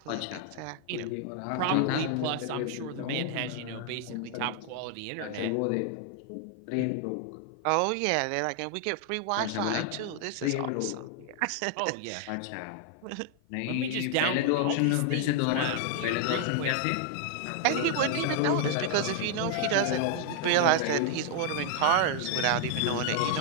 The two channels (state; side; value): different; both; correlation 0.00